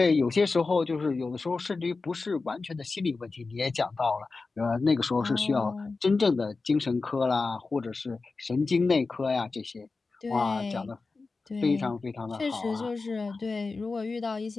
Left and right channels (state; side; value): quieter; right; 4.0 dB